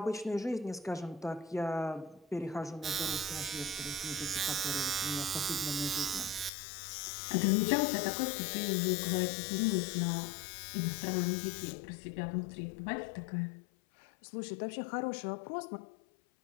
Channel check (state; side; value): drops out; right; at 6.5 s